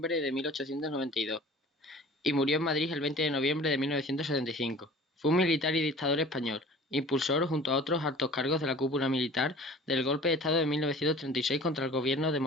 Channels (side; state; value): both; normal; correlation 0.44